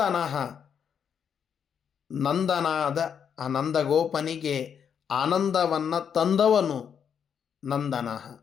ನಂದನಾದ ಆ ನಂದಗೋಪನಿಗೆ ಆನಂದವನ್ನು ತಂದವನು ನಂದನಃ.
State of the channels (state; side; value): quieter; right; 7.7 dB